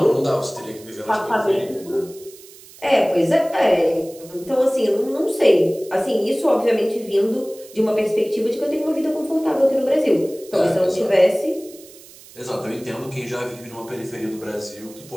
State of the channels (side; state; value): right; noise; hiss, 21 dB below the sound